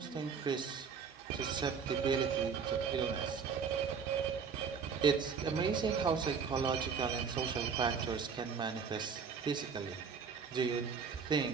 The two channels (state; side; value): quieter; left; 6.0 dB